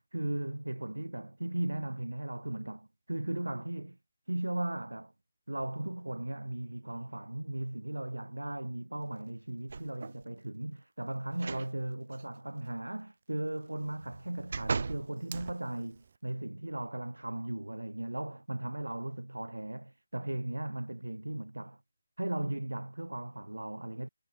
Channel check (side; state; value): both; inverted; correlation -1.00